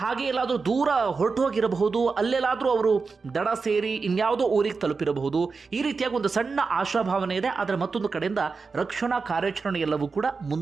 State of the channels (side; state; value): left; quieter; 4.6 dB